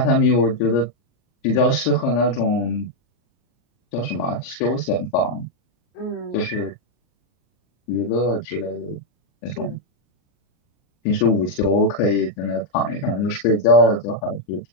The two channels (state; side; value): late; right; 30 ms